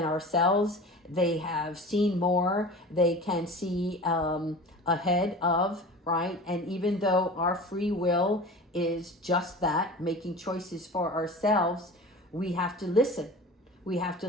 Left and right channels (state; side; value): normal; both; correlation 0.37